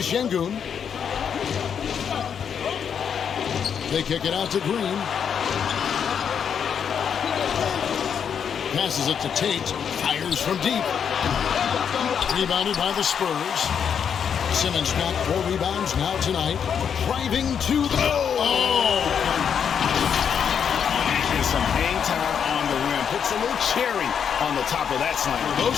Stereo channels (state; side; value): quieter; right; 7.6 dB